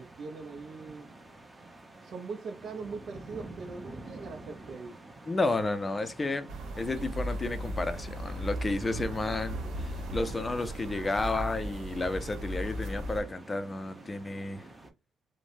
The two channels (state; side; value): normal; both; correlation 0.88